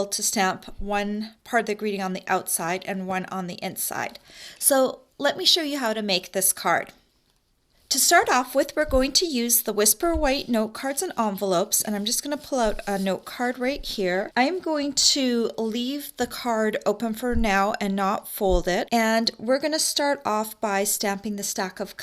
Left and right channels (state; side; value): identical; both; correlation 1.00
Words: to stamp one part of the greeting on the outside and one on the inside. So let me show you how to make this card. To start off with, we're going to use the Whisper White note cards and envelopes, and I'm just going to pull out a note card right here. I'm going to leave the card open for now and not fold it, and we're going to start off by stamping the stack of